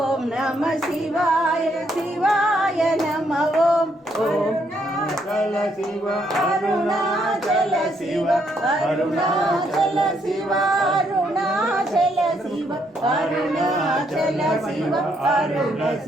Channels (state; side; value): normal; both; correlation 0.73